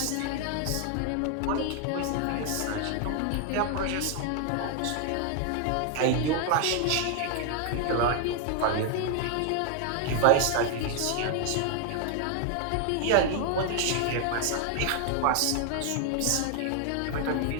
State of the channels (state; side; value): different; both; correlation 0.00